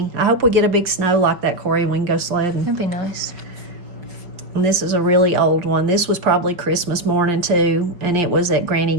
I hope we get a big snow like that, Corey, and we can go sledding. That'd be nice. And this is a really old one. This was probably Christmas morning too, and it was at Granny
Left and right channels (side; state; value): left; late; 5.3 ms